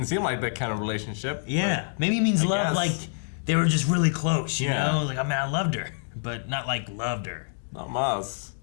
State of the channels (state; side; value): silent; right; digital silence